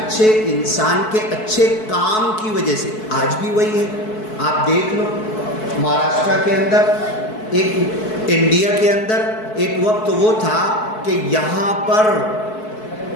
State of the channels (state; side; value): late; right; 4.6 ms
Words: انسان کے اچھے کام کی وجہ سے آج بھی وہی ہے۔ آپ دیکھ لو مہاراشٹرا کے اندر، ایک انڈیا کے اندر ایک وقت وہ تھا کہ یہاں پر